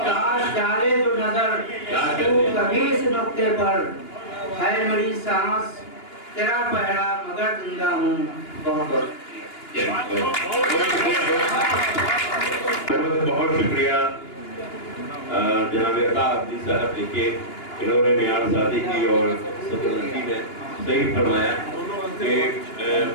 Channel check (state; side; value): late; right; 2.9 ms